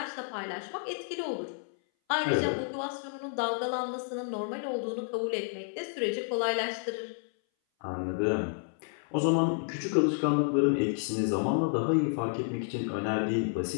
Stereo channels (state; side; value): silent; right; 57 dB below the other